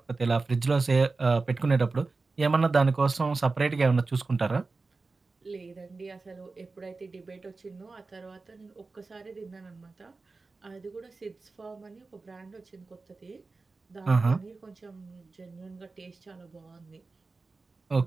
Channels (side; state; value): left; quieter; 3.8 dB